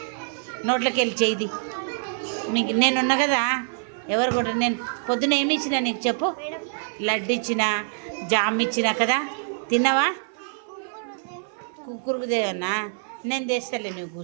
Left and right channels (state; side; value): silent; left; 56 dB below the other